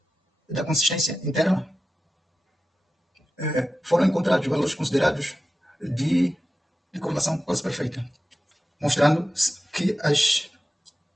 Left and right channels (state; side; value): normal; both; correlation 0.93